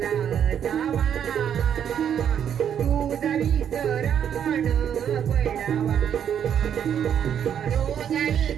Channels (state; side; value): quieter; left; 8.9 dB